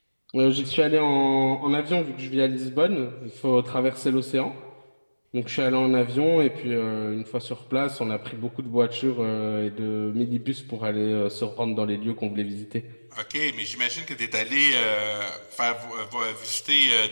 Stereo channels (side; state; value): both; inverted; correlation -1.00